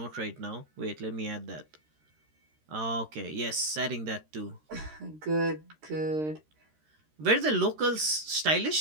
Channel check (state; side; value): late; left; 13 ms